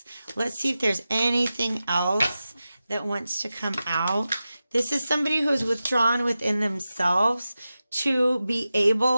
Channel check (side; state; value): both; inverted; correlation -0.93